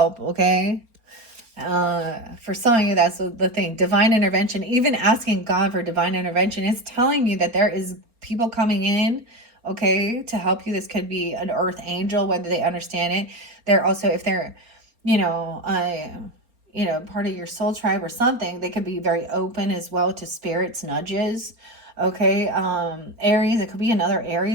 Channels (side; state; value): left; late; 4.3 ms